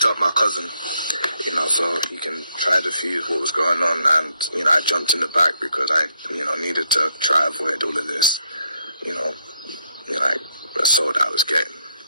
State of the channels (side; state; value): both; inverted; correlation -0.75